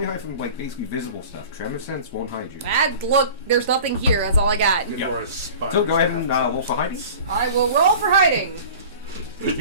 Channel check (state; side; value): inverted; both; correlation -0.41